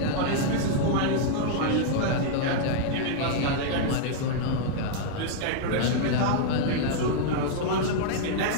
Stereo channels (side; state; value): both; different; correlation -0.01